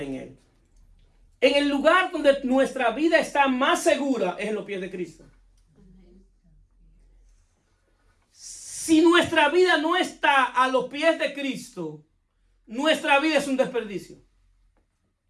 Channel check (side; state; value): both; identical; correlation 1.00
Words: en él. En el lugar donde nuestra vida está más segura es en los pies de Cristo. Si nuestra vida no está a los pies de Cristo, nuestra vida es un desperdicio.